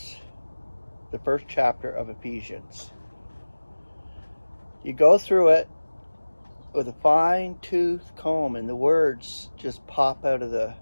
The first chapter of Ephesians. You go through it with a fine-tooth comb, and the words just pop out of the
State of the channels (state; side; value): inverted; both; correlation -1.00